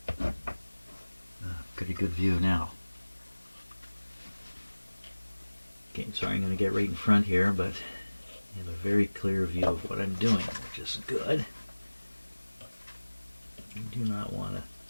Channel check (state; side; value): inverted; both; correlation -1.00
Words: Pretty good view now. Okay, sorry, I'm going to get right in front here, but you have a very clear view of what I'm doing, which is good. You do not want